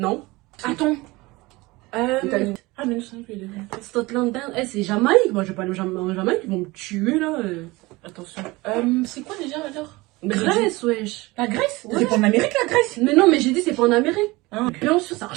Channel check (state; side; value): quieter; left; 21.9 dB